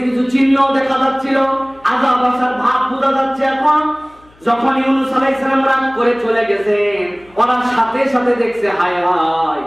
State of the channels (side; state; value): left; noise; hum, 29 dB below the sound